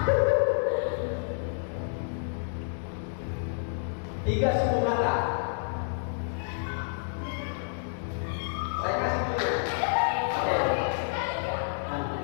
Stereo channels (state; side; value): silent; right; digital silence